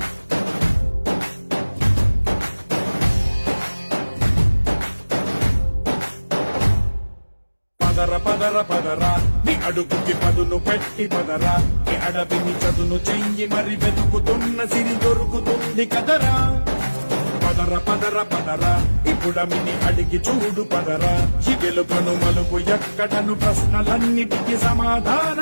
పదర పదర పదరా నీ అడుగుకి పదును పెట్టి పదరా నీ అడవిని చదును చెయ్యి మరి వెతుకుతున్న సిరి దొరుకుతుంది కదరా పదర పదర పదరా ఇప్పుడమిని అడిగి చూడు పదరా ఈ గెలుపను మలుపు ఎక్కడను ప్రశ్నలన్నిటికీ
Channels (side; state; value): both; inverted; correlation -1.00